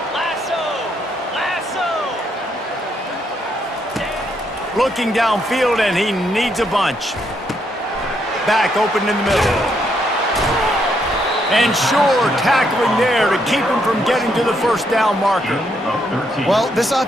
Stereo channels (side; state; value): both; normal; correlation 0.75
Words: Looking downfield, and he needs a bunch. Back open in the middle. And sure, tackling there to keep him from getting to the first down marker. Well, this